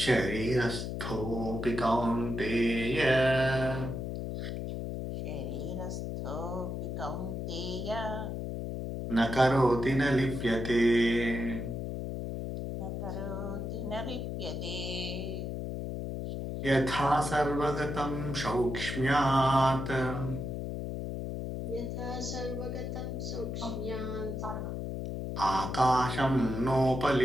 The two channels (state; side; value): noise; left; hum, 4 dB below the sound